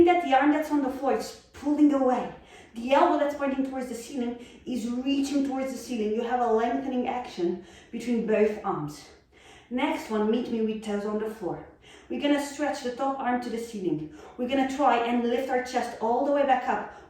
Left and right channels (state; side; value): identical; both; correlation 1.00